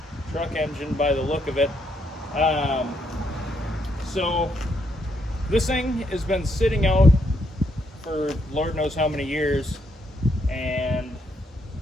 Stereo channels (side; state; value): both; normal; correlation 0.75